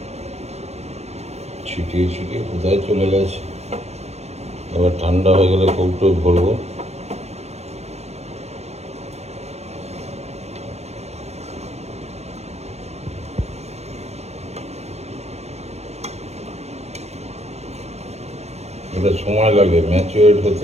ছিটিয়ে ছিটিয়ে কোথায় চলে গেছে। এবার ঠান্ডা হয়ে গেলে কৌটো ভরবো। এটা সময় লাগে ম্যাচুরেট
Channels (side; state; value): left; late; 0.31 ms